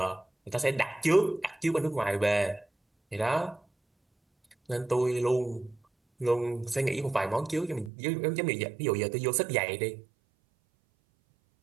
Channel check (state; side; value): drops out; left; at 7.9 s